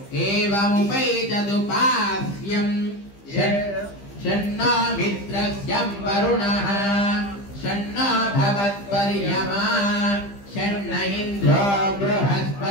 एवमुपैतदुपास्यम् षण्णो मित्रस्यं वरुणः षण्णो भवत्पर्यमा षण्ण इन्द्रो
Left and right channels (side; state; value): right; late; 15 ms